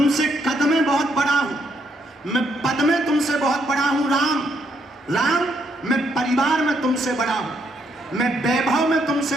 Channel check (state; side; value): normal; both; correlation 0.74